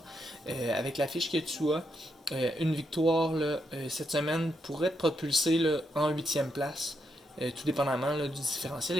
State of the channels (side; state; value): both; normal; correlation 0.81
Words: avec la fiche que tu as, une victoire là, cette semaine pourrait te propulser là, en 8e place, tout dépendamment là, du différentiel